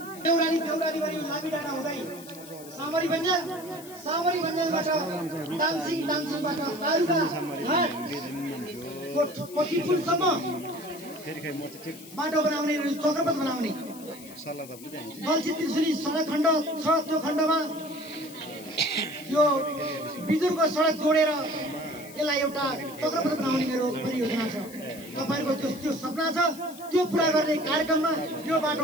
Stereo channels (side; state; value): left; noise; hiss, 18 dB below the sound